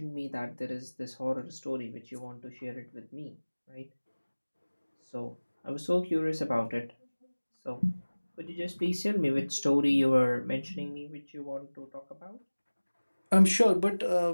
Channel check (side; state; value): both; inverted; correlation -1.00